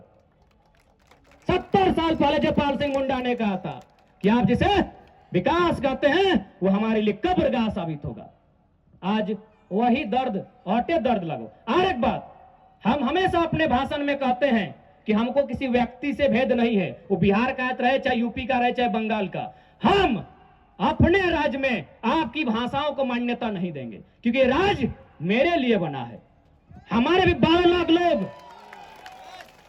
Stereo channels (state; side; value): identical; both; correlation 1.00